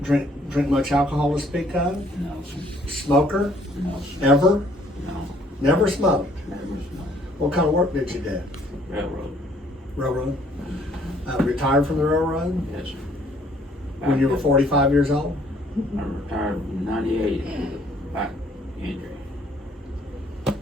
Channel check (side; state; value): both; normal; correlation 0.62